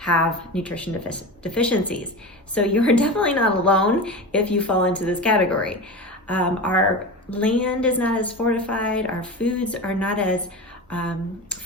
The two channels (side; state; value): both; normal; correlation 0.26